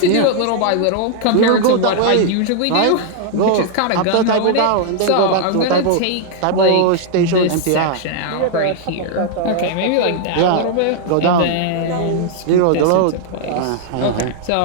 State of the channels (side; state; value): both; different; correlation -0.01